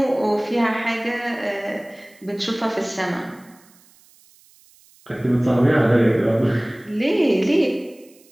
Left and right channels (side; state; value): right; noise; hiss, 29 dB below the sound